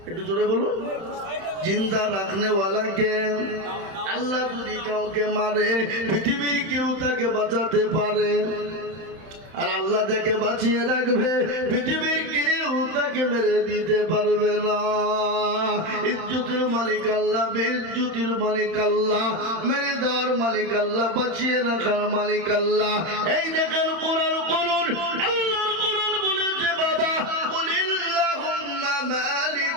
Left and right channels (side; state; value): left; late; 31 ms